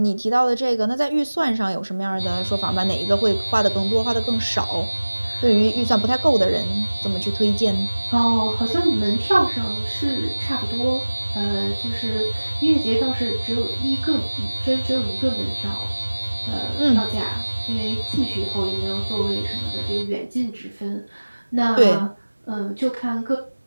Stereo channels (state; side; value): inverted; both; correlation -1.00